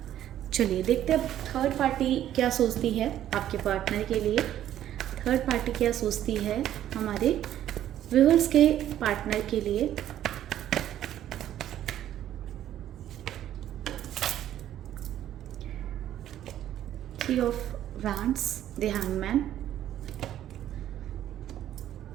चलिए देखते हैं थर्ड पार्टी क्या सोचती है आपके पार्टनर के लिए। थर्ड पार्टी क्या सोचती है हमारे व्यूअर्स के पार्टनर के लिए। Three of wands, the hangman,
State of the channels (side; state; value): left; quieter; 11.7 dB